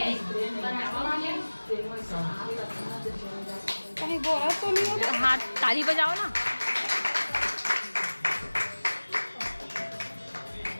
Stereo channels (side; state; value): both; inverted; correlation -1.00